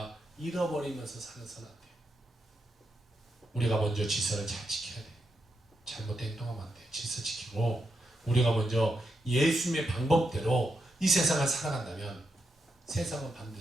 잃어버리면서 살아서는 안 돼요. 우리가 먼저 질서를 잘 지켜야 돼요. 잘못된 행동하면 안 돼요. 질서 지키고 우리가 먼저 예수님의 방법대로 이 세상을 살아간다면 세상은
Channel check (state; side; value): normal; both; correlation 0.84